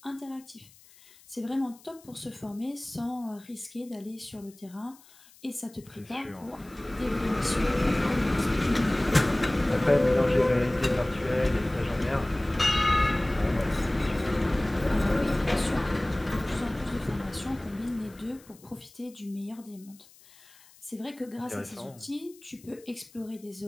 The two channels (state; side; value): noise; left; hiss, 25 dB below the sound